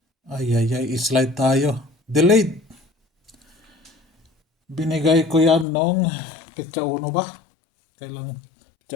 Ay, slide tayo. Delayed. Binigay ko yan nung petsa 1 ba? Kailang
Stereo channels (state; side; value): drops out; right; at 5.7 s